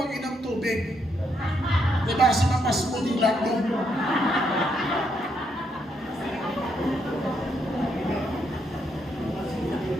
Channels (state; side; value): normal; both; correlation 0.76